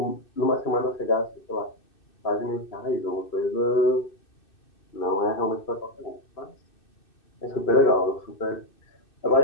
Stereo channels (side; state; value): right; late; 2.6 ms